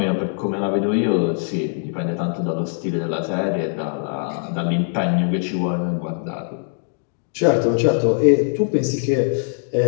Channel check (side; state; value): right; silent; digital silence